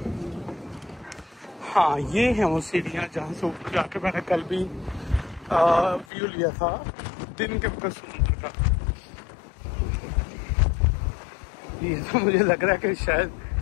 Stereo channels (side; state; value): right; drops out; at 6.1 s